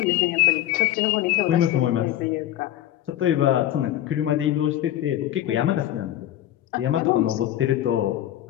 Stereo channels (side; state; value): right; quieter; 13.0 dB